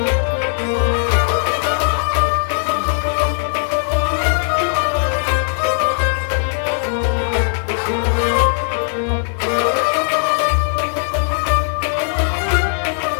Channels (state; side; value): silent; right; 67 dB below the other